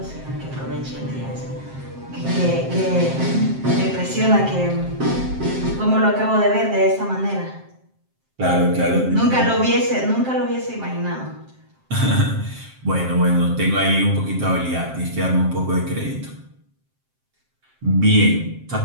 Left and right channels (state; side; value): late; left; 7.6 ms